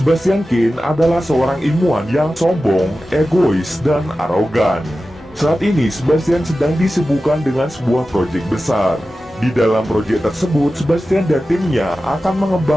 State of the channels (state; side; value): normal; both; correlation 0.94